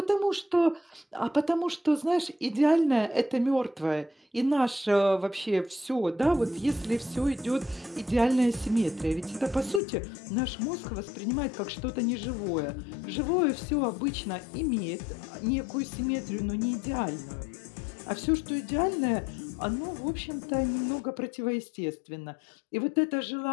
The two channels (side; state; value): right; drops out; at 9.8 s